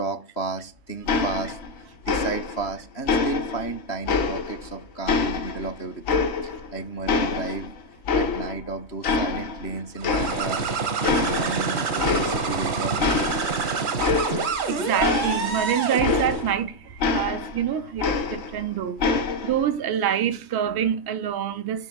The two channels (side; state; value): right; late; 3.2 ms